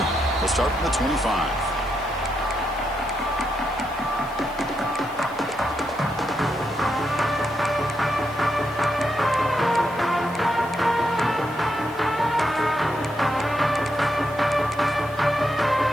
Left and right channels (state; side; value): noise; left; hiss, 24 dB below the sound